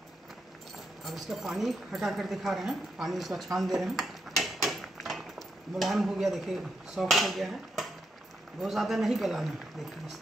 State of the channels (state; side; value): normal; both; correlation 0.82